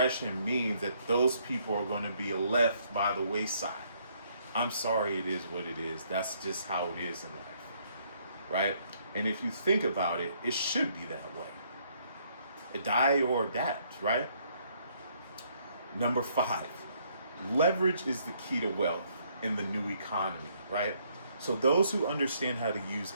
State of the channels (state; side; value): inverted; both; correlation -0.68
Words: means that those people are going to be left by the wayside. I'm sorry, it is what it is. That's just how it is in life, right? And if you think about it, it should be that way. Die or adapt, right? Number 5, leverage is the key to wealth in the new economy, right? So those who understand how to use